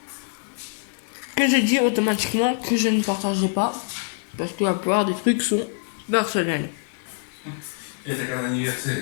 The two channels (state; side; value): silent; right; digital silence